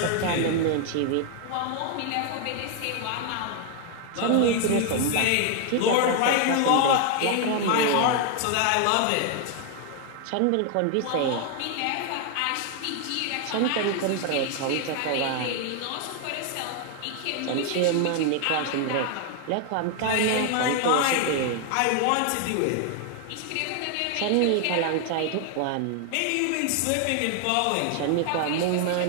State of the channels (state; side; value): different; both; correlation 0.00